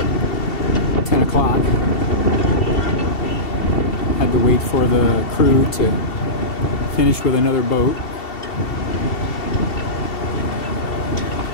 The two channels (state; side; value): late; right; 2.7 ms